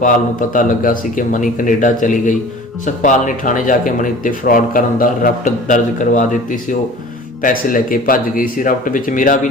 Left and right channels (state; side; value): normal; both; correlation 0.43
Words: ਨੂੰ ਪਤਾ ਲੱਗਾ ਸੀ ਕਿ ਮਣੀ ਕੈਨੇਡਾ ਚਲੀ ਗਈ। ਸੁਖਪਾਲ ਨੇ ਥਾਣੇ ਜਾ ਕੇ ਮਣੀ ਉੱਤੇ ਫਰਾਡ ਕਰਨ ਦਾ ਰਿਪੋਰਟ ਦਰਜ ਕਰਵਾ ਦਿੱਤੀ ਸੀ। ਉਹ ਪੈਸੇ ਲੈ ਕੇ ਭੱਜ ਗਈ ਸੀ। ਰਿਪੋਰਟ ਵਿੱਚ ਮੇਰਾ ਵੀ